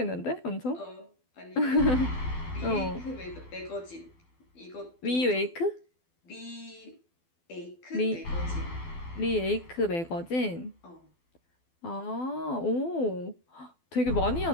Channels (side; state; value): right; late; 12 ms